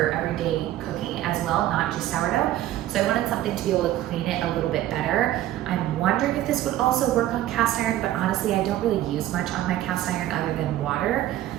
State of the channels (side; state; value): left; quieter; 13.8 dB